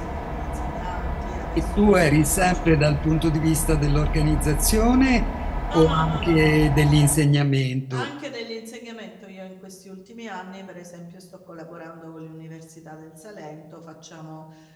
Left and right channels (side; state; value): both; identical; correlation 1.00